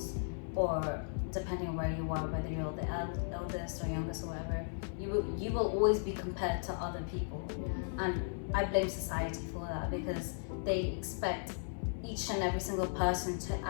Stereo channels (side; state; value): right; silent; 54 dB below the other